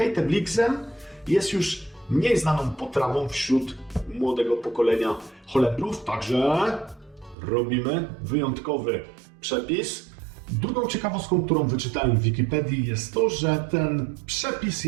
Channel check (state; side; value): drops out; left; at 7.4 s